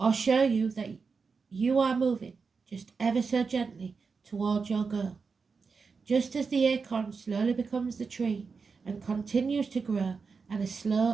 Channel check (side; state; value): left; quieter; 5.0 dB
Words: show you that you are moving just ever so gently towards your goal. Just as the acorn slowly becomes the tree and continues to grow at a